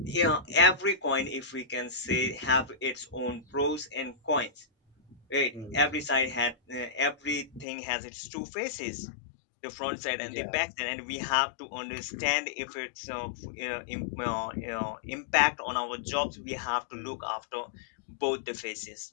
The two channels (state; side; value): drops out; right; at 7.7 s